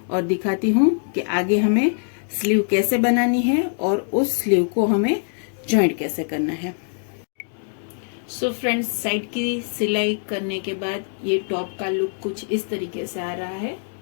और दिखाती हूँ कि आगे हमें स्लीव कैसे बनानी है और उस स्लीव को हमें ज्वाइंट कैसे करना है। सो फ्रेंड्स, साइड की सिलाई करने के बाद ये टॉप का लुक कुछ इस तरीके से आ रहा है।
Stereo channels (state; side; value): silent; right; 63 dB below the other